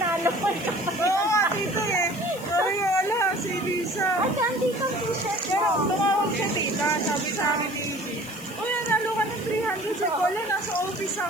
Oo nga, dito eh. Ay, wala, si Lisa. Ay, nandito ang t-shirt Pero mo. tumawag siya tita, sabi sa akin ni Jin. Uy, nanalo ka ng 300 sa wala, nasa office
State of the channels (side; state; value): left; noise; hiss, 17 dB below the sound